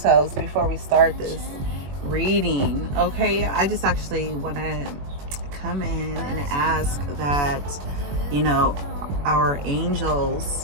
before we start this reading. Okay, I just actually want to come in and ask that, our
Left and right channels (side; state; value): left; late; 21 ms